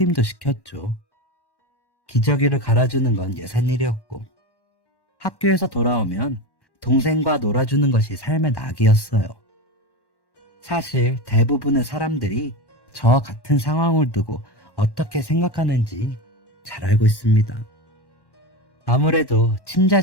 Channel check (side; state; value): right; late; 1.1 ms